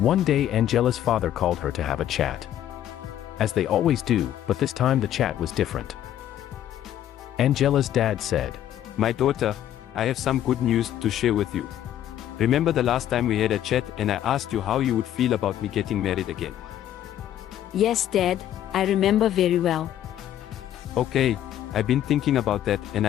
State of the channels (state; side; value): quieter; right; 11.5 dB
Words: day Angela's father called her to have a chat. As they always do, but this time the chat was different. Angela's dad said, "My daughter, I have some good news to share with you. Remember the last time we had a chat and I asked you how you would feel about me getting married again?" Yes, Dad, I remember very well. Okay, I've been thinking about that and